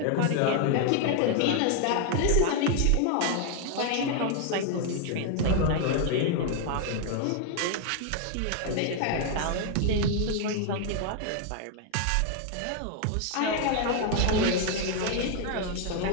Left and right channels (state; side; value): different; both; correlation 0.00